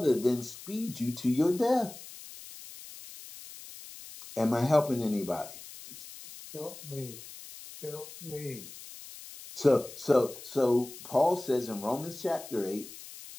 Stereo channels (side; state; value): left; noise; hiss, 15 dB below the sound